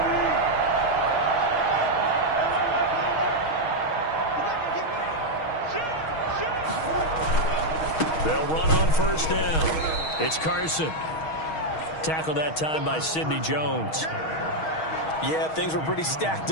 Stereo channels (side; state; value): right; late; 6.3 ms